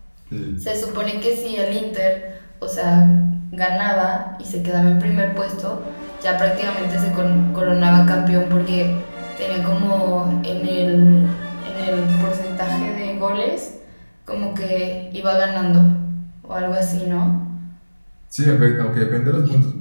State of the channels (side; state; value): both; inverted; correlation -1.00